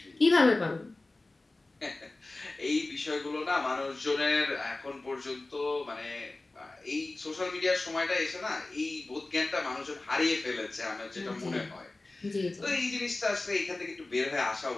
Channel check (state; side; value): quieter; right; 3.0 dB